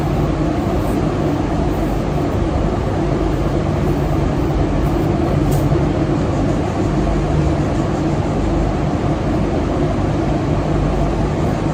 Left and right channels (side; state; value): both; identical; correlation 1.00